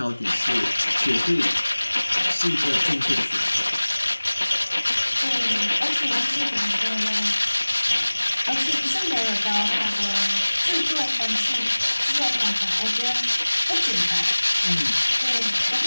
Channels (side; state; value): both; inverted; correlation -1.00